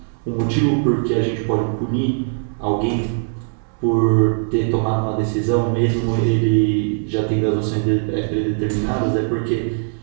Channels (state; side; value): silent; left; digital silence